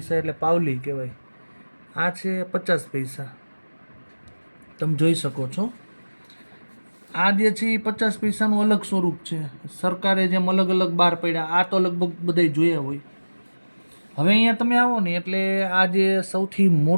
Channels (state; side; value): inverted; both; correlation -1.00